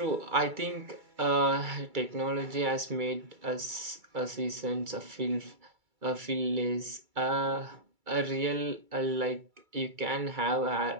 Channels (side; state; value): left; late; 2.3 ms